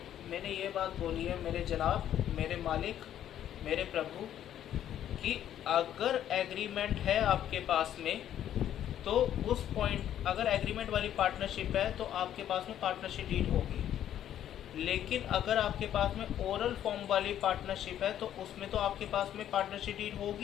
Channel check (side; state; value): right; quieter; 10.9 dB